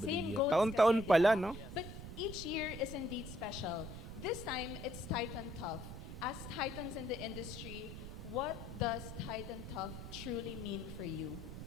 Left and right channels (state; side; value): noise; right; rumble, 9 dB below the sound